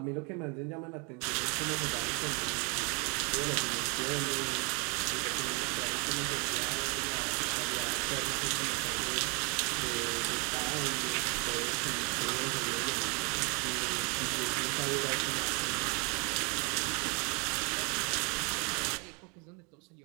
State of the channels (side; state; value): left; quieter; 32.7 dB